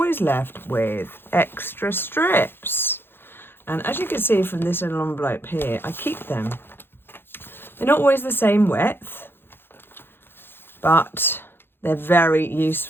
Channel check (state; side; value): late; right; 0.10 ms